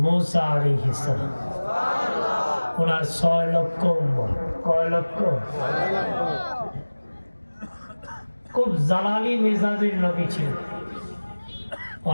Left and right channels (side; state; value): both; inverted; correlation -1.00